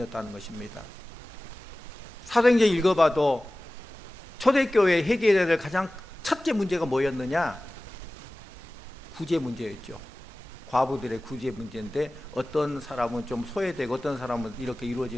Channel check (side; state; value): both; normal; correlation 0.97